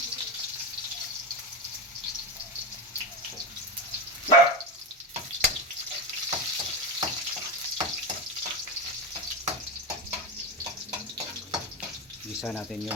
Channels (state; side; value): normal; both; correlation 0.17